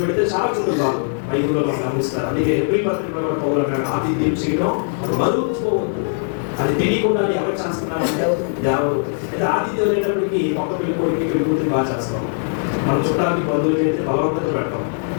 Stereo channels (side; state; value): right; silent; digital silence